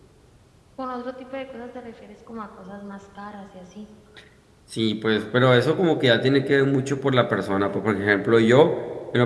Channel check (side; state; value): both; identical; correlation 1.00